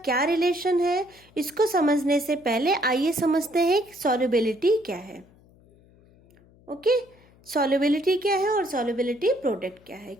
रिलेशन है, इसको समझने से पहले आइए समझते हैं कि सॉल्युबिलिटी क्या है। ओके, सॉल्युबिलिटी क्या है और सॉल्युबिलिटी प्रोडक्ट क्या है,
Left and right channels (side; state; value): left; noise; hum, 28 dB below the sound